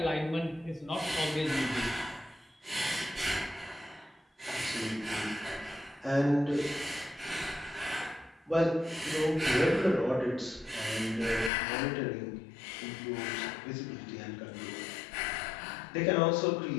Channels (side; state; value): right; drops out; at 11.5 s